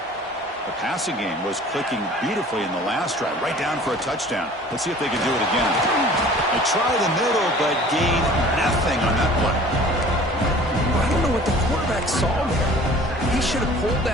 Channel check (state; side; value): normal; both; correlation 0.47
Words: The passing game was clicking beautifully in the last drive, right down for a touchdown. Let's see if they can do it again. They try the middle, but gain nothing on that play. I don't know what the quarterback saw there. He should have pulled